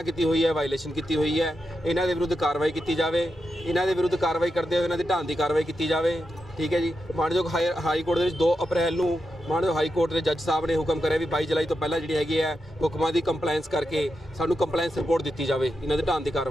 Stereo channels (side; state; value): both; normal; correlation 0.87